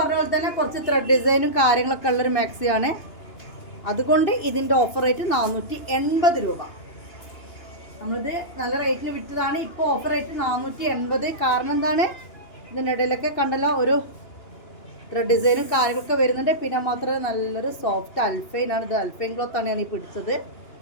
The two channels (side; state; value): right; late; 2.8 ms